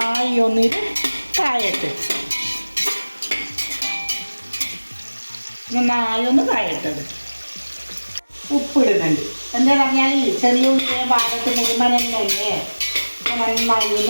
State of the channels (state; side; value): inverted; both; correlation -1.00